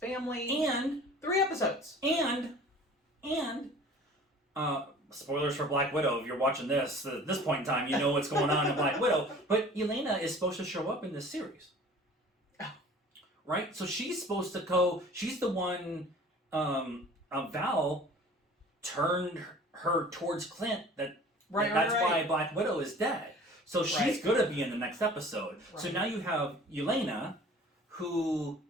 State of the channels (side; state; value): both; normal; correlation 0.46